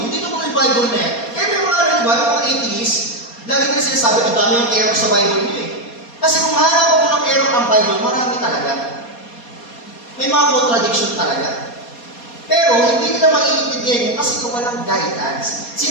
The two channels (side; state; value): right; late; 4.2 ms